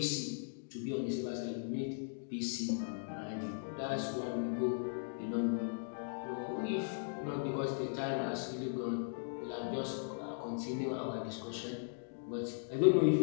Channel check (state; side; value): silent; right; digital silence